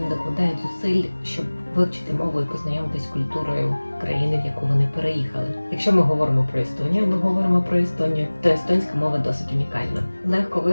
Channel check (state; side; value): inverted; both; correlation -1.00